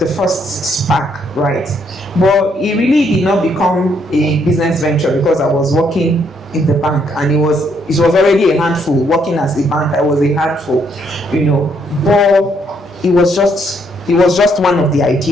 first spark, right? But it really did not become a business venture because I was working in the bank, and it was already a handful. Working as a bank, I was a handful, but it was just one of the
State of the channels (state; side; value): normal; both; correlation 0.71